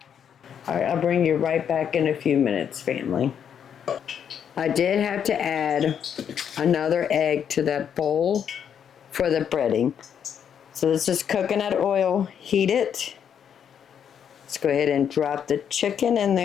All right, I'll bring you right back in a few minutes, family. I did have to add another egg to that bowl for the breading. So this is coconut oil, heat it. Let's go ahead and drop the chicken in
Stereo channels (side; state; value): right; quieter; 8.3 dB